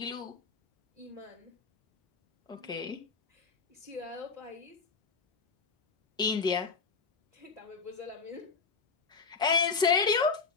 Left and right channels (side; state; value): right; quieter; 4.9 dB